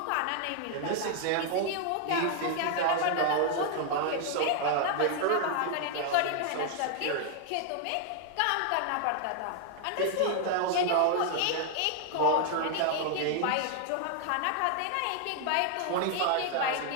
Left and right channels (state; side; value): different; both; correlation 0.00